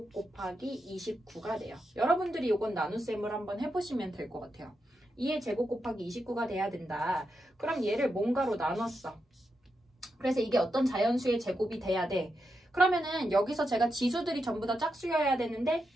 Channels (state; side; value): normal; both; correlation 0.86